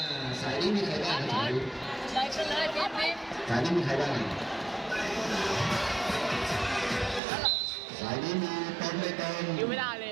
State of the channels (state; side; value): drops out; left; at 7.2 s